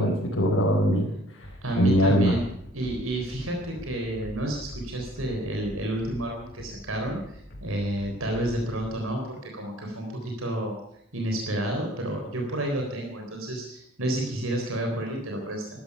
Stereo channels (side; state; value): both; normal; correlation 0.55